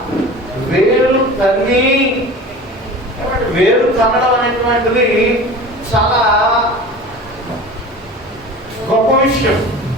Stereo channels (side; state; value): both; normal; correlation 0.36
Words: వేరు తన్ని, వేరు తన్నడం అనేటువంటిది చాలా గొప్ప విషయం.